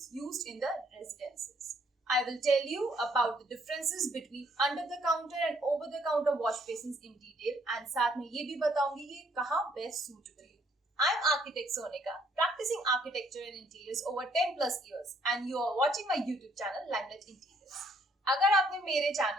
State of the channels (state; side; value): normal; both; correlation 0.66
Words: used in the residences. I will tell you about the differences between under the counter and over the counter wash basins in detail and साथ में ये भी बताऊंगी कि कहाँ best suitable है। I am architect Sonika, practicing architecture and interiors over 10 plus years and you are watching my YouTube channel Limelight Interiors. अगर आपने मेरे